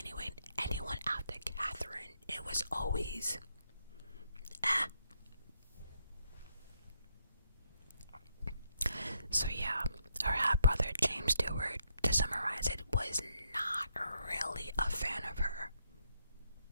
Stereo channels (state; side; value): inverted; both; correlation -0.76